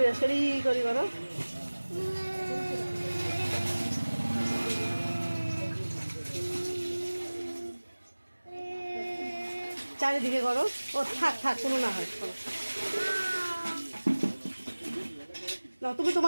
বিরাজ করি, করি করো। চারিদিকে করো। ও থাক থাক, কোনো না হয়, করো না, তুমি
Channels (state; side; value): inverted; both; correlation -1.00